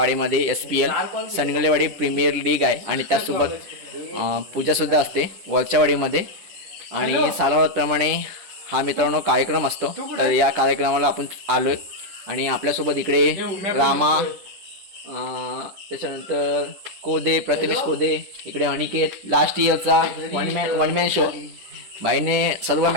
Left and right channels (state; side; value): late; left; 10 ms